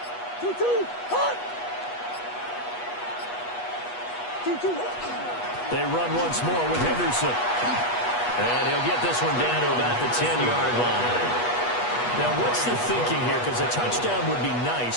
2-2. Hot. 2-2. They run once more with Henderson. And he'll get this one down to about the 10-yard line. Now, what's the thinking here? Because a touchdown would be nice,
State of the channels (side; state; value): right; late; 8.3 ms